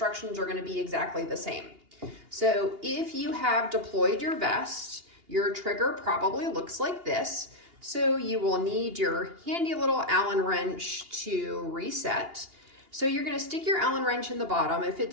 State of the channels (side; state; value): left; late; 2.8 ms